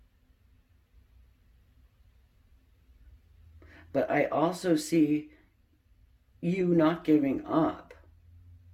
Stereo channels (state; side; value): identical; both; correlation 1.00